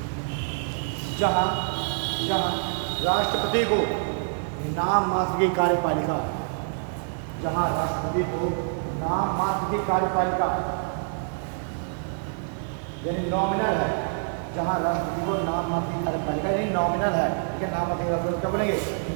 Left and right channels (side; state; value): left; silent; digital silence